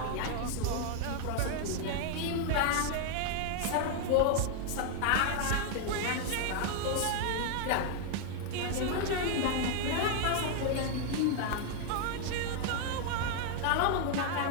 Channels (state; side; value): different; both; correlation 0.00